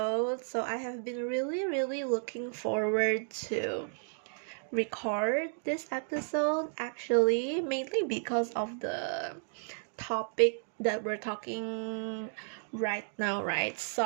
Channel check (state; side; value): silent; left; digital silence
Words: So, I have been really looking forward to record this episode actually, mainly because of the topic that we're talking right now, right?